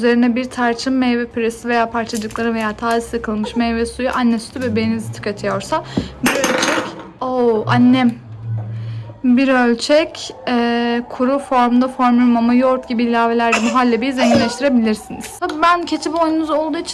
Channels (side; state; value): both; identical; correlation 1.00